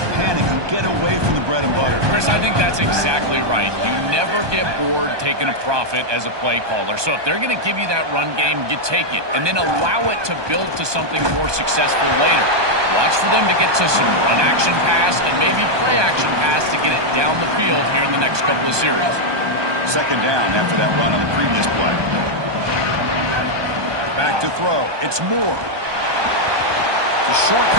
panic and get away from the bread and butter. Chris, I think that's exactly right. You never get bored taking a profit as a play caller. So if they're going to give you that run game, you take it, and then allow it to build to something more successful later. Watch for them to get to some run action pass and maybe play action pass to get it down the field here in the next couple of series. 2nd down after that run on the previous play. Back to throw. It's Moore. It's a short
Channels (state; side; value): late; left; 1.2 ms